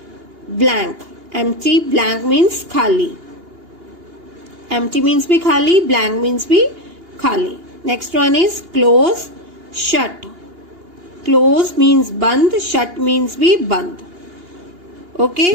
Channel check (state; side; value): late; left; 2.8 ms